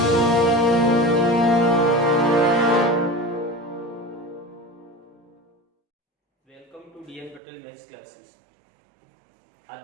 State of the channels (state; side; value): drops out; left; at 7.4 s